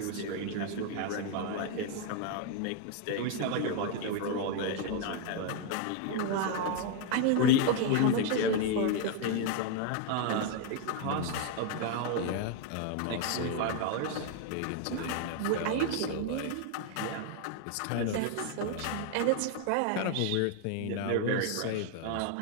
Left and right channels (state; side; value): different; both; correlation 0.01